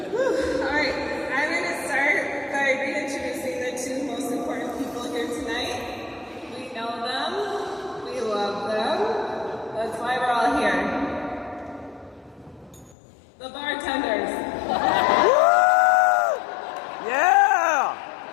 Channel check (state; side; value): drops out; right; at 13.0 s